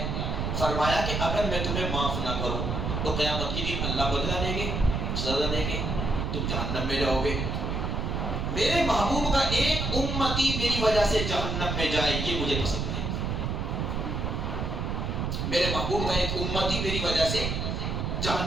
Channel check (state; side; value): noise; right; rumble, 1 dB below the sound